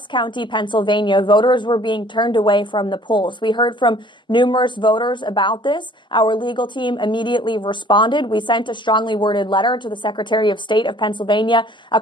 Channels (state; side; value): normal; both; correlation 0.54